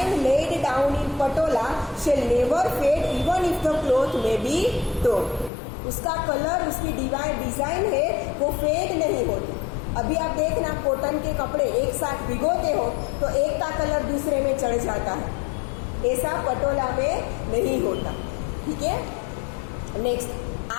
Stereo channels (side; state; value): right; drops out; at 5.5 s